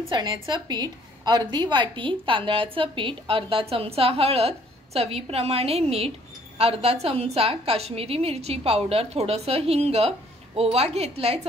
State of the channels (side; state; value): both; normal; correlation 0.61